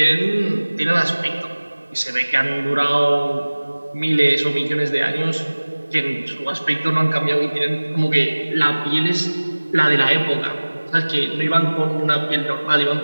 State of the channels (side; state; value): both; inverted; correlation -1.00